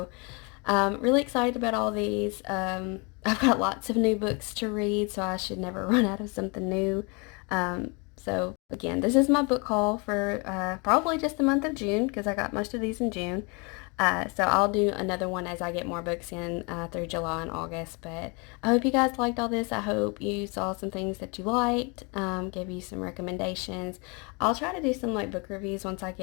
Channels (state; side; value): quieter; right; 31.1 dB